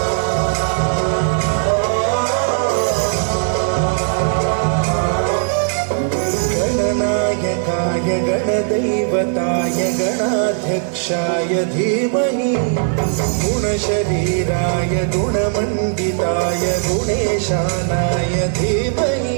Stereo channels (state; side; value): silent; left; 60 dB below the other